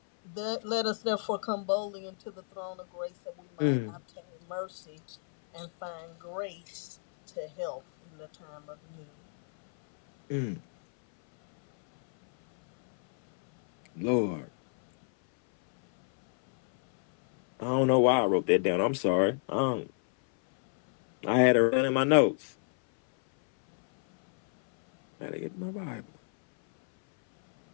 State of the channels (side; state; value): right; silent; 58 dB below the other